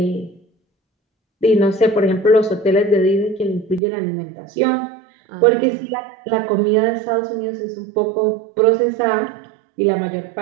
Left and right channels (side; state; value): left; drops out; at 3.8 s